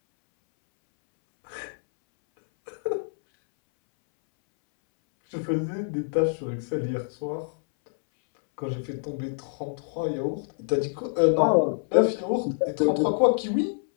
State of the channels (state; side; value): silent; right; 61 dB below the other